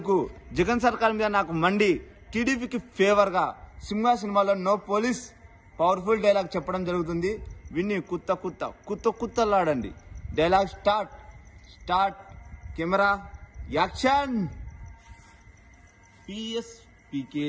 జగన్ సర్కార్ మీద నాకు మండి టీడీపీకి ఫేవర్ గా సింహ సినిమాలో నో పోలీస్ పవర్ఫుల్ డైలాగ్ చెప్పడం జరుగుతుంది. విని కుత్తలాడండి. Dialogue start camera action.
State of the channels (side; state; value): both; identical; correlation 1.00